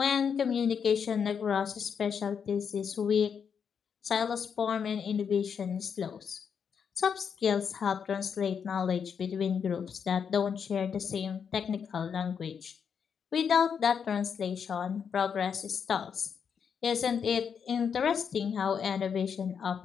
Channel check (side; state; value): right; quieter; 6.9 dB